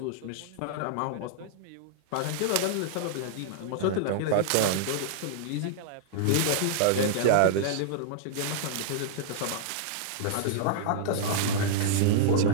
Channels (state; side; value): different; both; correlation -0.01